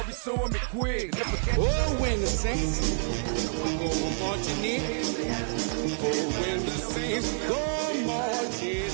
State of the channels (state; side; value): silent; left; digital silence